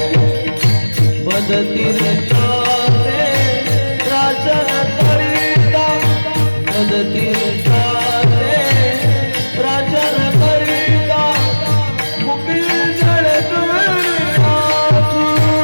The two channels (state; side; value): inverted; both; correlation -1.00